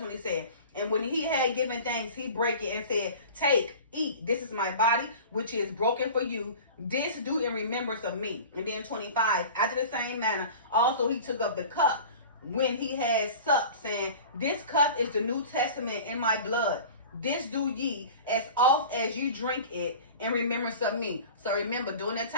he said, and when he had given thanks, he broke it and said, take, eat. This is my body, which is broken for you. This do in remembrance of me. And then 25, after the same manner, also he took up the cup when he had supped, saying, this cup is the New Testament in my blood. This do ye as oft as you drink it in remembrance of me. So remember, during that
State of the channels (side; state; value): both; inverted; correlation -0.38